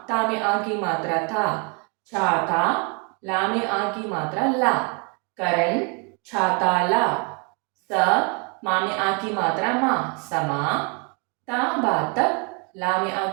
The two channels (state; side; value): quieter; left; 34.6 dB